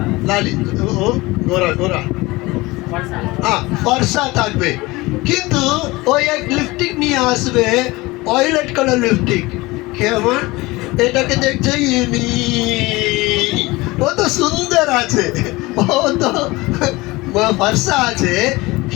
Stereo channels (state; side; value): quieter; right; 21.5 dB